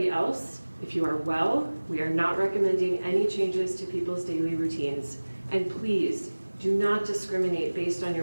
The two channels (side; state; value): both; inverted; correlation -1.00